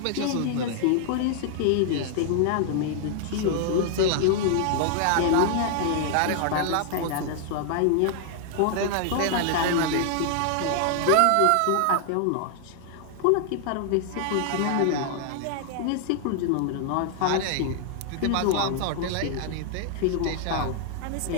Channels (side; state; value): both; different; correlation 0.00